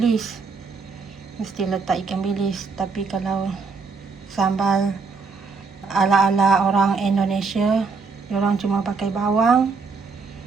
mesti letak ikan bilis. Tapi kalau sambal ala-ala orang Indonesia, diorang cuma pakai bawang,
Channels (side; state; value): left; quieter; 4.7 dB